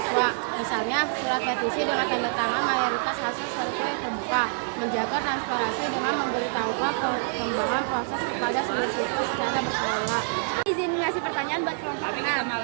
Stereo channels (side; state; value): left; silent; 59 dB below the other